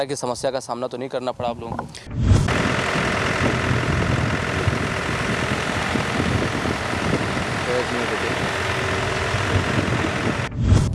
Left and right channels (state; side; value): identical; both; correlation 1.00